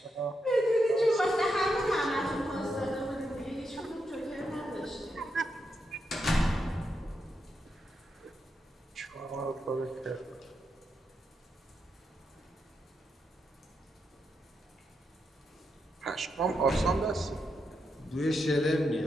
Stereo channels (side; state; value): both; normal; correlation 0.84